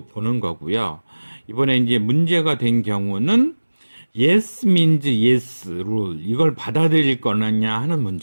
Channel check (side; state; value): both; inverted; correlation -1.00